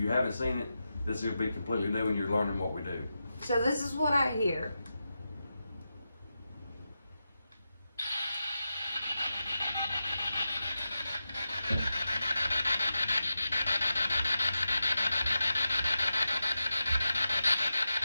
haven't seen it, this will be completely new and you're learning what we do. So this is what I hear.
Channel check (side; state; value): both; inverted; correlation -0.90